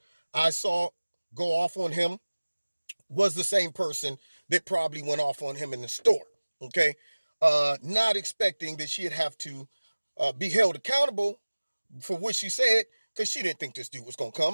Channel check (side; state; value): both; inverted; correlation -1.00